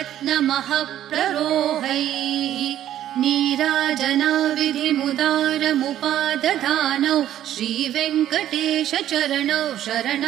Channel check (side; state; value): left; quieter; 11.8 dB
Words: नीराजनाविधिमुदारमुपादधानौ श्रीवेङ्कटेश चरणौ